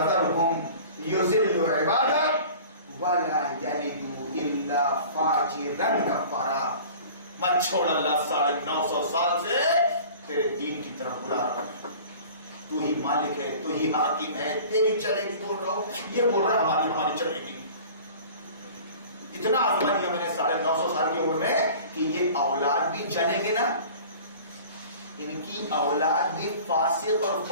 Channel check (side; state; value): both; inverted; correlation -0.43